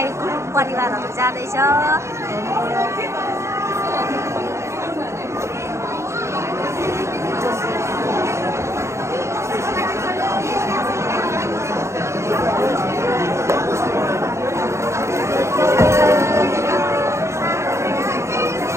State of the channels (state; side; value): late; left; 0.14 ms